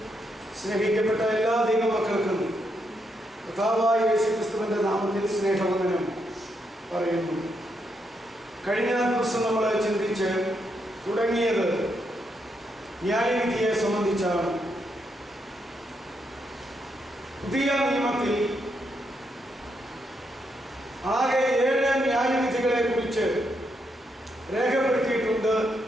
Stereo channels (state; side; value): normal; both; correlation 0.79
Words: സ്നേഹിക്കപ്പെട്ട എല്ലാ ദൈവമക്കൾക്കും കർത്താവായ യേശുക്രിസ്തുവിന്റെ നാമത്തിൽ സ്നേഹവന്ദനം പറയുന്നു. കഴിഞ്ഞ ദിവസം നമ്മൾ ചിന്തിച്ച് തുടങ്ങിയത് ന്യായവിധിയെ സംബന്ധിച്ചാണ്. പുതിയ നിയമത്തിൽ ആകെ 7 ന്യായവിധികളെ കുറിച്ച് രേഖപ്പെടുത്തിയിട്ടുണ്ട്